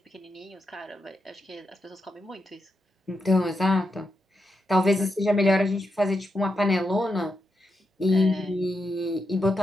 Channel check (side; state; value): both; normal; correlation 0.85